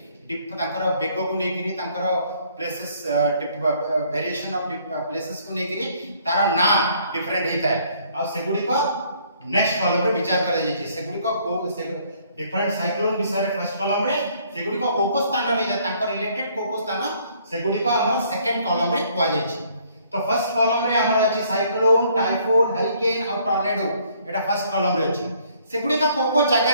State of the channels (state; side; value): inverted; both; correlation -0.63